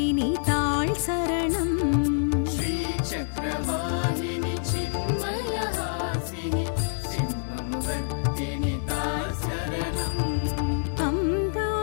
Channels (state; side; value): silent; right; 60 dB below the other